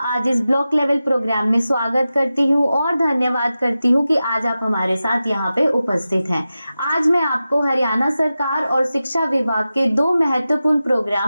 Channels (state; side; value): inverted; both; correlation -0.93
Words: आज इस ब्लॉक लेवल प्रोग्राम में स्वागत करती हूँ और धन्यवाद करती हूँ कि आज आप हमारे साथ यहाँ पे उपस्थित हैं। आज मैं आपको हरियाणा सरकार और शिक्षा विभाग के 2 महत्वपूर्ण